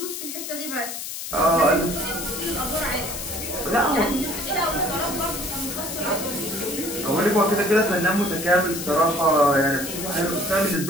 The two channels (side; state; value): left; noise; hiss, 7 dB below the sound